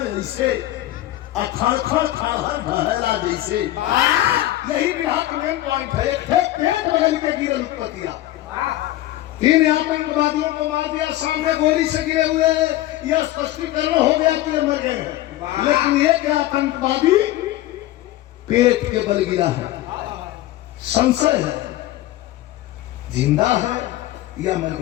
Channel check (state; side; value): quieter; right; 15.3 dB